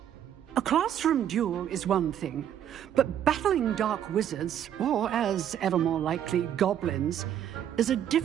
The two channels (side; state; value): left; quieter; 10.1 dB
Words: A classroom duel is one thing, but battling dark wizards, or as ever more likely, goblins, is a